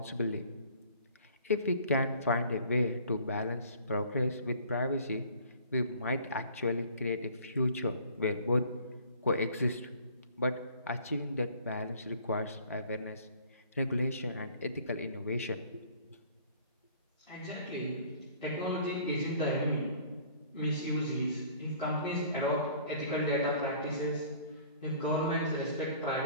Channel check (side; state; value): both; inverted; correlation -0.52